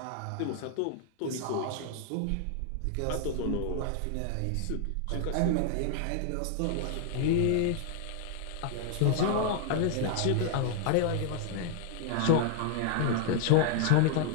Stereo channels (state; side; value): different; both; correlation 0.00